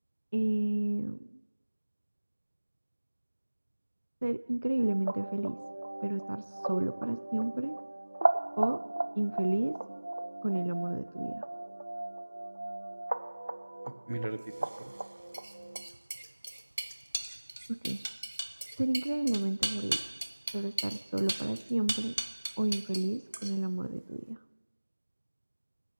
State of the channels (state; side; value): inverted; both; correlation -1.00